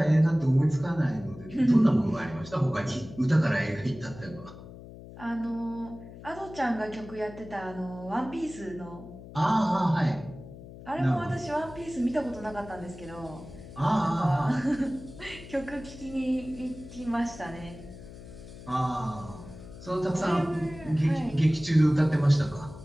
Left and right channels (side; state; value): left; noise; hum, 16 dB below the sound